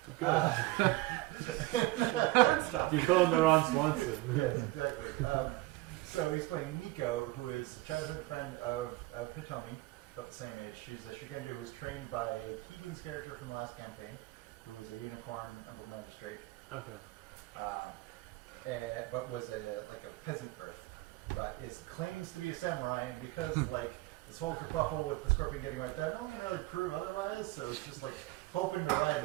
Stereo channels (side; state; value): left; quieter; 19.6 dB